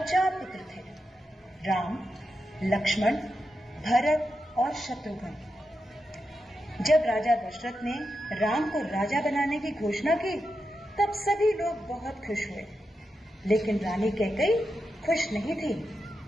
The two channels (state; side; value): normal; both; correlation 0.88